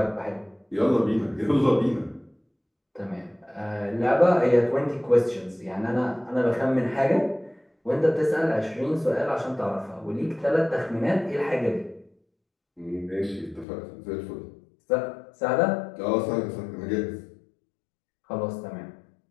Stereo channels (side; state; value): right; drops out; at 13.7 s